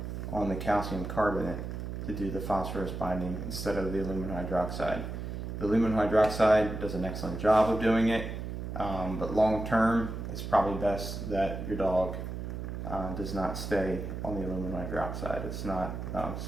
on the calcium carbonate to do the phosphorus binding instead of the aluminum hydroxide. The aluminum hydroxide does an excellent job of doing it, but long term, it's probably best that your dog does not stay on the aluminum hydroxide. It's not it's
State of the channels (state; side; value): noise; right; hum, 6 dB below the sound